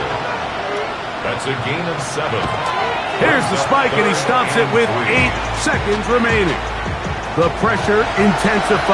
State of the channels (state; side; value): identical; both; correlation 1.00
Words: That's a gain of 7. Here's the spike, and he stops it with 8 seconds remaining. The pressure